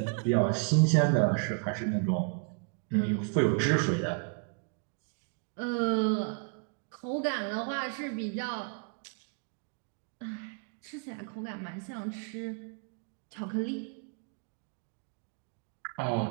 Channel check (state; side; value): quieter; left; 39.1 dB